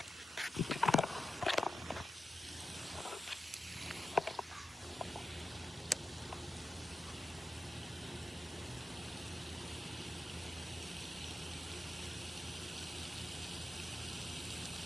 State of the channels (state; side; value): normal; both; correlation 0.91